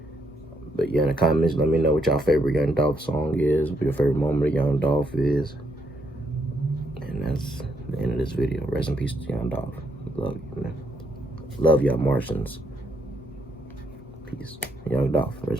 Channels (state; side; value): normal; both; correlation 0.75